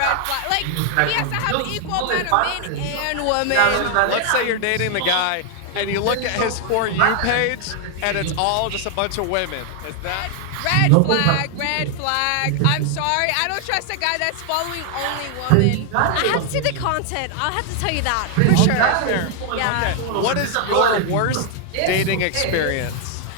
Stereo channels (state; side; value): different; both; correlation 0.00